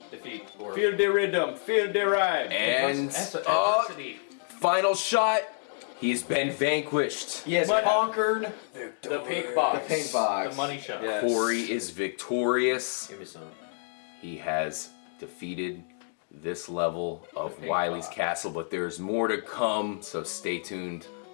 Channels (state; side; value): silent; right; digital silence